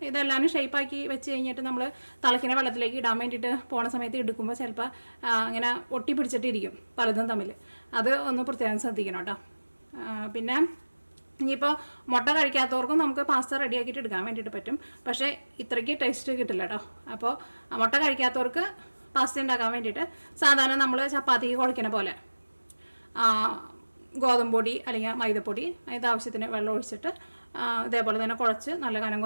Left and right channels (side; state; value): both; inverted; correlation -1.00